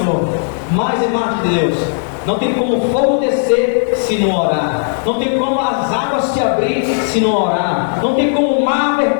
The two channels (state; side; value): silent; right; digital silence